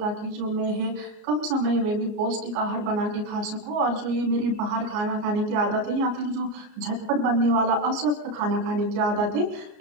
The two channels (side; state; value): left; late; 33 ms